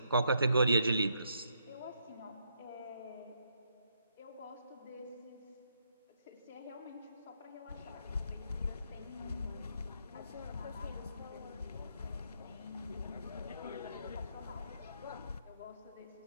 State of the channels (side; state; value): both; inverted; correlation -0.76